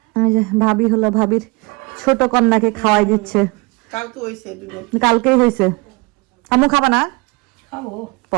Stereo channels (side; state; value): left; quieter; 26.9 dB